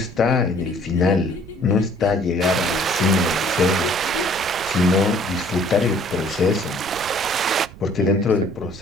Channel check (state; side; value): noise; right; rumble, 18 dB below the sound